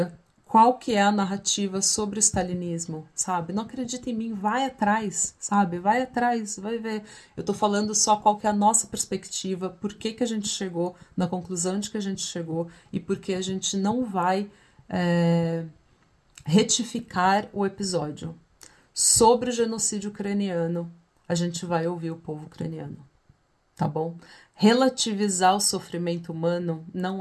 qual que é a narrativa sobre o stalinismo, sabe? Não acredita em mim, vai atrás, sabe? Vai atrás, vai ver. Eu tô falando só qual que é a nossa perspectiva, por que que a gente chegou na conclusão de que a gente chegou e por que a gente não vai retificar o episódio. Sobre o genocídio ucraniano, a gente vai ouvir o povo ucraniano, tá bom? Relativizar o sofrimento humano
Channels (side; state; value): both; identical; correlation 1.00